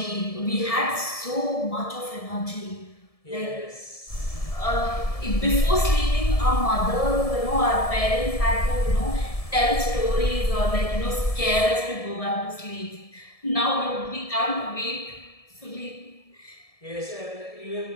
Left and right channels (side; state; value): right; late; 1.7 ms